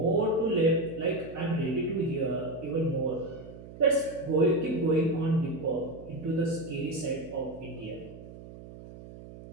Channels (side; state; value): right; noise; hum, 15 dB below the sound